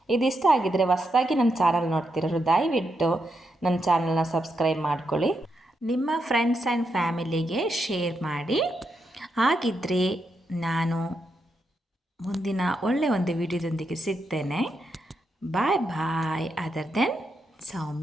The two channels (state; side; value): normal; both; correlation 0.83